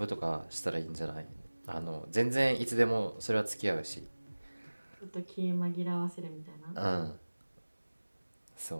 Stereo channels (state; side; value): inverted; both; correlation -1.00